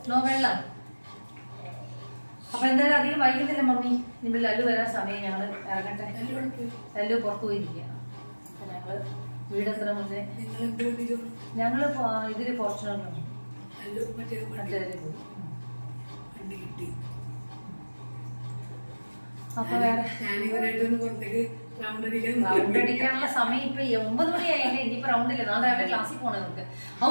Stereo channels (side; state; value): both; inverted; correlation -1.00